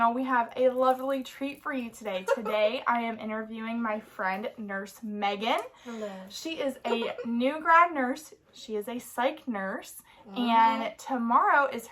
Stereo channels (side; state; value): both; identical; correlation 1.00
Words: We have a lovely treat for you today. Today I am interviewing my friend Nurse Meaghan. Hello. She is a new grad nurse. She is a psych nurse, and tomorrow is